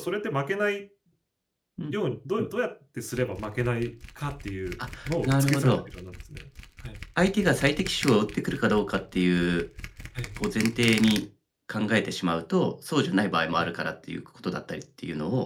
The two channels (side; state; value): both; identical; correlation 1.00